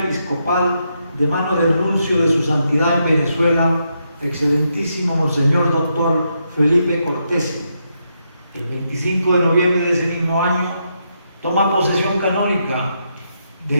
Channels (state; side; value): inverted; both; correlation -0.81